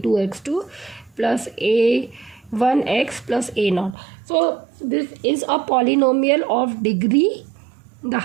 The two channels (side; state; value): left; drops out; at 4.0 s